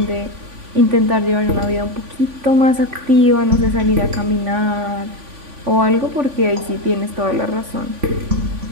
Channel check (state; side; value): late; left; 3.5 ms